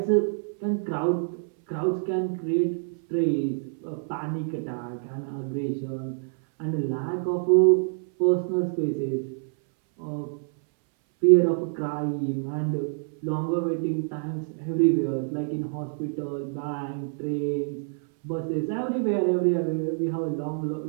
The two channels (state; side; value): silent; left; 60 dB below the other